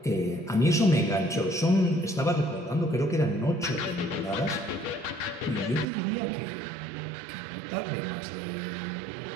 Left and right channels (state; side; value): drops out; left; at 5.9 s